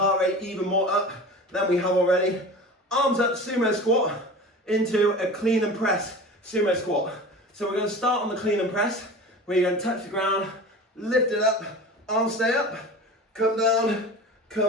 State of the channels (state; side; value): normal; both; correlation 0.35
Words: rate even more up than we have already. Arms up, sumo squat, into a clean and press sumo squat. So we're going to start on the clean and press, where you're going to touch the ground, lift it up, arms stay up, come down,